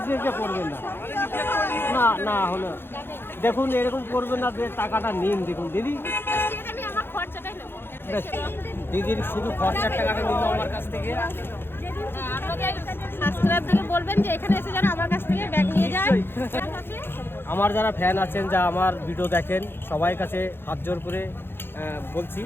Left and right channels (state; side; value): late; right; 0.10 ms